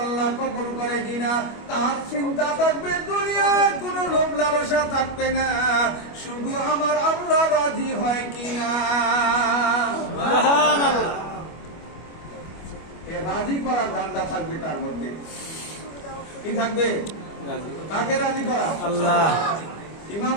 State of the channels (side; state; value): right; late; 25 ms